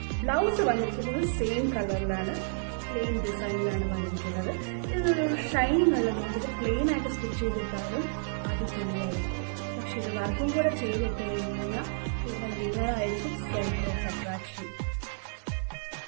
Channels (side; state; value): left; silent; digital silence